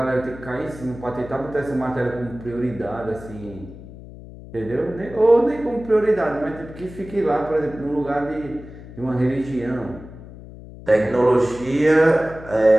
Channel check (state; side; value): noise; left; hum, 16 dB below the sound